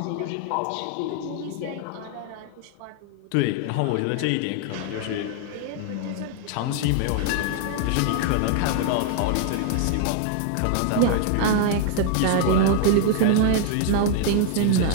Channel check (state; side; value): different; both; correlation 0.00